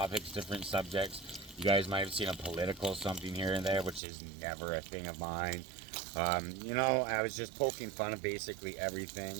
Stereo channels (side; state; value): left; drops out; at 4.0 s